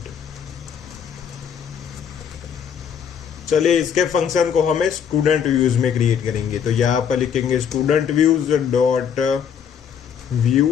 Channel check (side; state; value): right; quieter; 7.8 dB